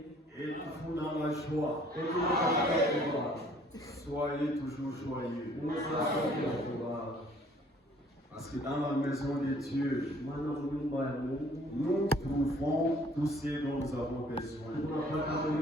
et vous dans la joie. Soyez toujours joyeux. Parce que dans la maison de Dieu, nous trouvons tout ce dont nous avons besoin.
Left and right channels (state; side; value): normal; both; correlation 0.58